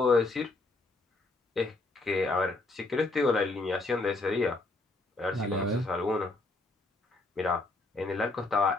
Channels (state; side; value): quieter; right; 3.1 dB